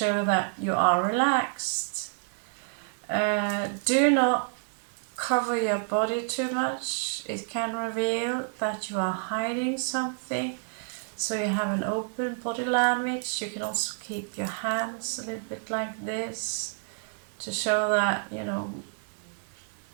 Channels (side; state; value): left; silent; digital silence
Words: that you are relaxed. Do not cover your body too much. It can reveal that you are hiding something. So you have an open body language. You can also keep your hands a little bit like this to show that, you know,